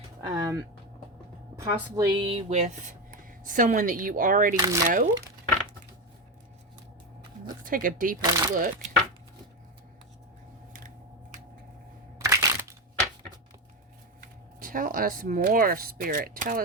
possibly with someone that you already know. Let's take a deeper look. Tell us more, Spirit. Tell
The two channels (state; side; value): normal; both; correlation 0.14